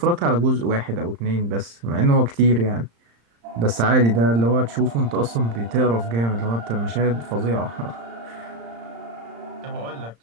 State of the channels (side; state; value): left; late; 35 ms